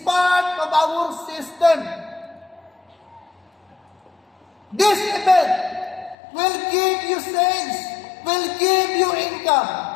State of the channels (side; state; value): right; drops out; at 6.2 s